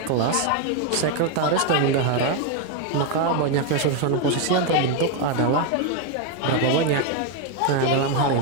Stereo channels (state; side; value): different; both; correlation 0.01